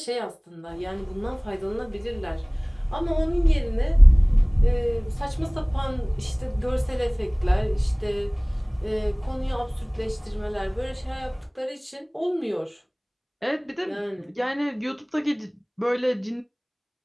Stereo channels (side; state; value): both; identical; correlation 1.00